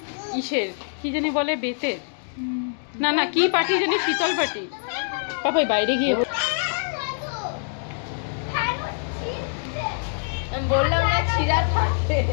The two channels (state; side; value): silent; right; digital silence